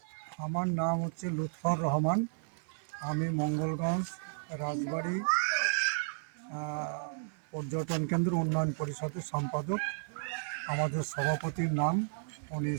আমার নাম হচ্ছে লুৎফর রহমান। আমি মঙ্গলগঞ্জ রাজবাড়ি পর্যটন কেন্দ্র উন্নয়ন পরিষদের সম্পাদক। আমাদের সভাপতির নাম, উনি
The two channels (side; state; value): left; silent; 56 dB below the other